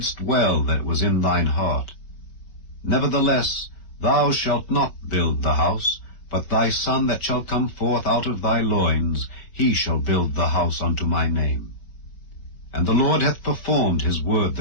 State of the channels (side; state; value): right; late; 5.3 ms